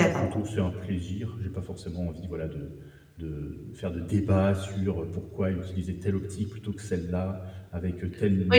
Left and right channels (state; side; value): identical; both; correlation 1.00